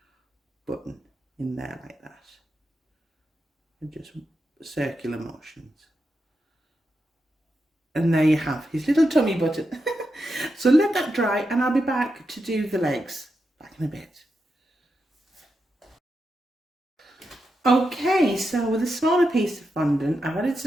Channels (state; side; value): normal; both; correlation 0.87